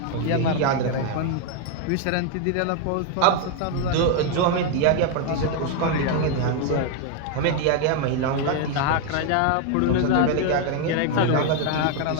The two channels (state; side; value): different; both; correlation 0.00